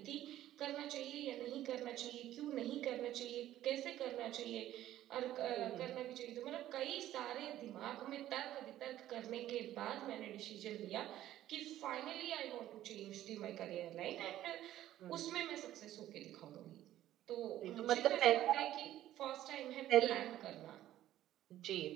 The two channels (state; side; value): quieter; left; 13.3 dB